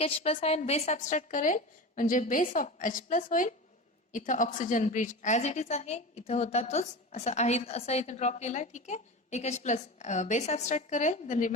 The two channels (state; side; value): normal; both; correlation 0.28